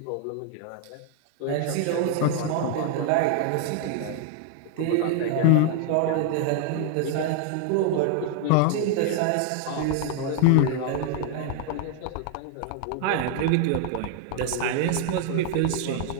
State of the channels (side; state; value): both; different; correlation 0.00